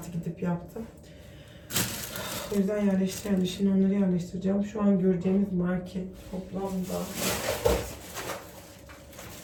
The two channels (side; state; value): both; identical; correlation 1.00